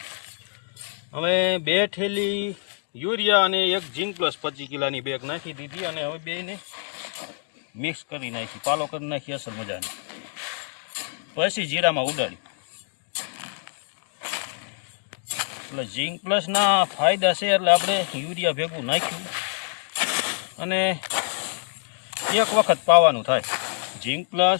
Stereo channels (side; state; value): right; silent; digital silence